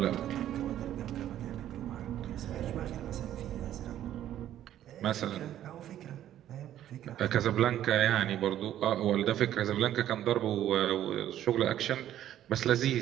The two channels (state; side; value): quieter; left; 11.8 dB